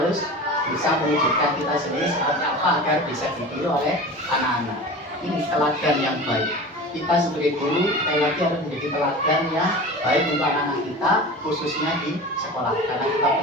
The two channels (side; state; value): both; normal; correlation 0.34